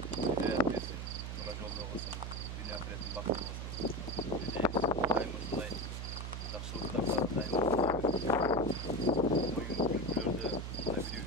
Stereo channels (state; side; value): noise; right; hum, 5 dB below the sound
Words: hidayet versin. Tura jolda olsun. Dünya ahiretin baktı olsun. Daim uşunday жақсылықтарга daim oyun kültürlerde